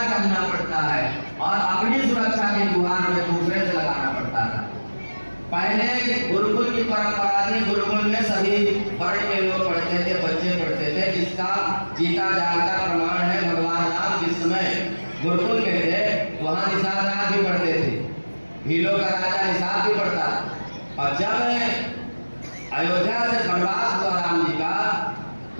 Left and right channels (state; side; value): inverted; both; correlation -1.00